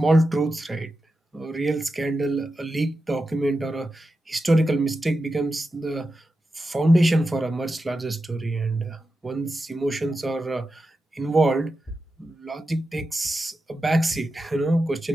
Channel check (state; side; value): normal; both; correlation 0.90